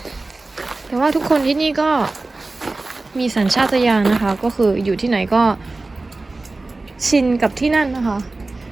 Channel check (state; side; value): quieter; left; 3.3 dB